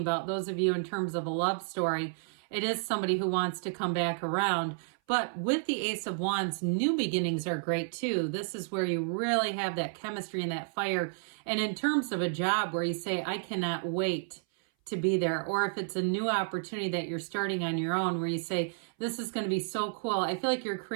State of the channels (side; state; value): left; silent; 56 dB below the other